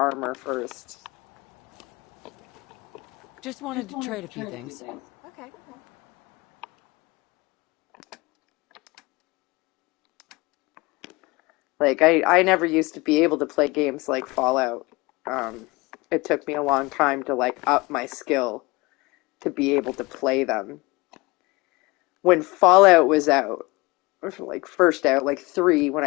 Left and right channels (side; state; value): right; quieter; 23.7 dB